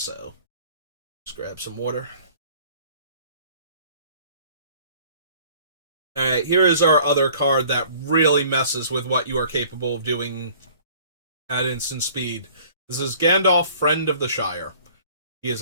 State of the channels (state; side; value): inverted; both; correlation -0.52